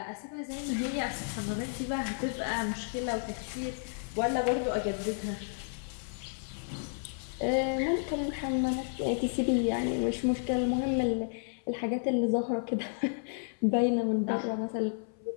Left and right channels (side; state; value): right; silent; 56 dB below the other